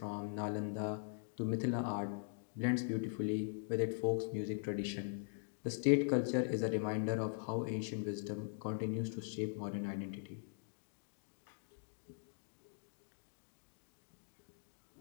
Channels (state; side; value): silent; right; digital silence